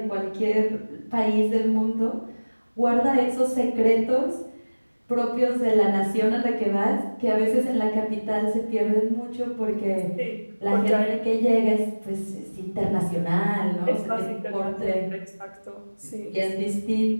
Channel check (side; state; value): both; inverted; correlation -1.00